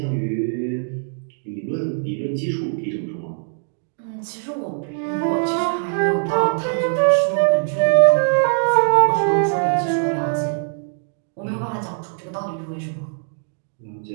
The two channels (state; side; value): silent; left; digital silence